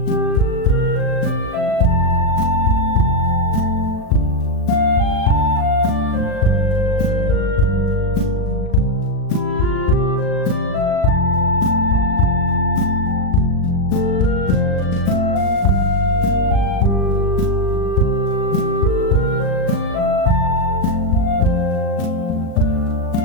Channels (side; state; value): right; late; 38 ms